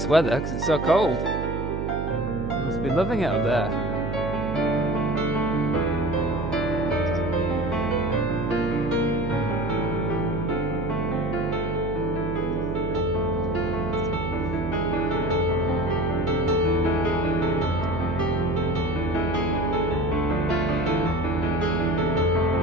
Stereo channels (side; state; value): right; noise; hum, 3 dB below the sound